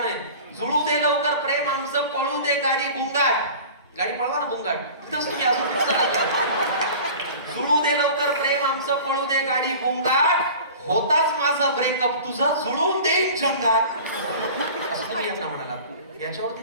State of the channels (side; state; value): both; inverted; correlation -0.40